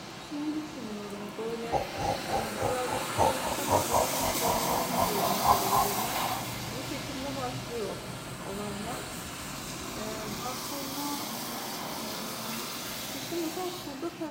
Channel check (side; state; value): both; identical; correlation 1.00